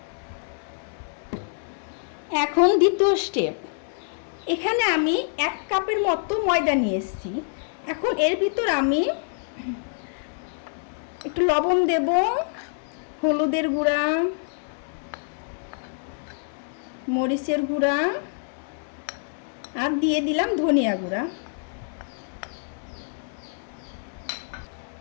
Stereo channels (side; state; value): right; silent; 61 dB below the other